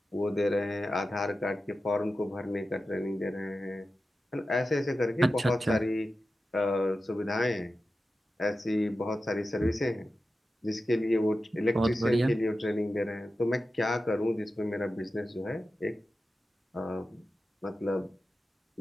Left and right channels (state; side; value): normal; both; correlation 0.92